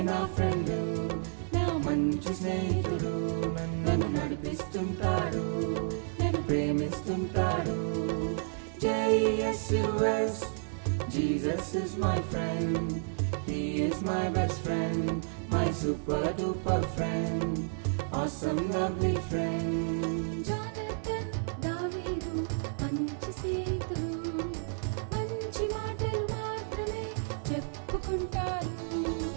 నా ఫ్రెండ్, నా మంచి స్నేహితుడు, నన్ను నడిపిస్తుంటాడు, నన్ను ప్రేమిస్తుంటాడు. JESUS, Jesus is my friend, He is my best friend, my super duper friend, awesome lovely friend. Jonathan, దావీదు మంచి స్నేహితులు, మంచి మాటలు మాత్రమే చెప్పుకుంటారు,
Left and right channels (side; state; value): left; silent; digital silence